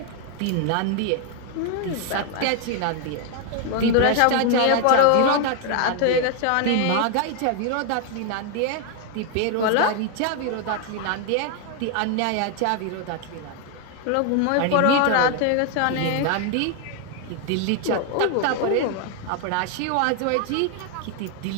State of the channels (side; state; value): both; different; correlation 0.00